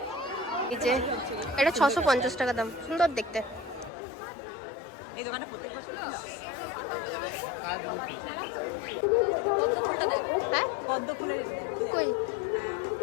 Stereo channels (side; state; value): right; drops out; at 3.9 s